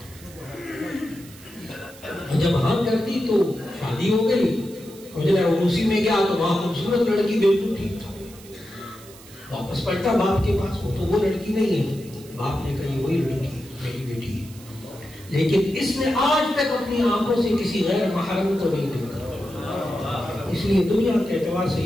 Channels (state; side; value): noise; right; hiss, 21 dB below the sound